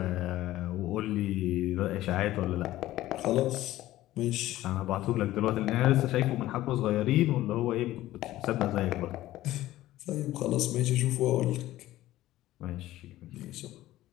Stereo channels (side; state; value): right; quieter; 15.4 dB